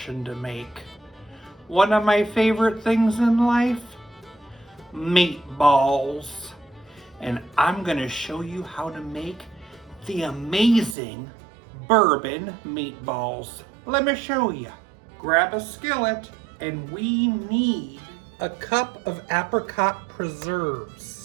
to make. One of my favorite things in life? Meatballs. And I'm gonna show you how to make the amazing bourbon meatballs. Let me show you. Grab a skillet and we need a cup of apricot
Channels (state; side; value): drops out; left; at 11.0 s